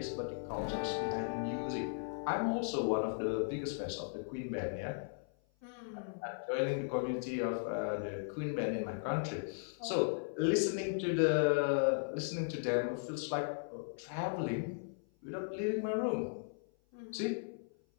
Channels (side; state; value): right; silent; 53 dB below the other